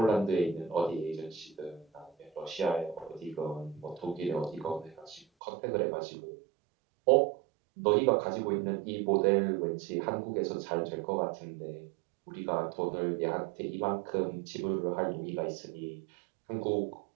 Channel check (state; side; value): drops out; left; at 5.2 s